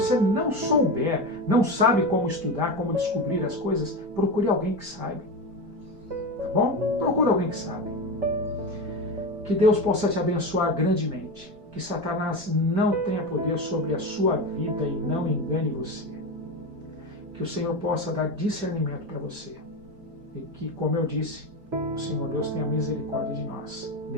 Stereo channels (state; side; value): late; left; 5.0 ms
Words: não souber, não sabe como estudar, como descobrir as coisas, procure alguém que saiba. Tá bom? Procure alguém que sabe. Que Deus possa te abençoar grandemente. Que Satanás não tenha poder sobre a sua vida e não engane você. Que o Senhor possa dar discernimento para você. E que, como eu disse, o Senhor Deus tenha misericórdia de nós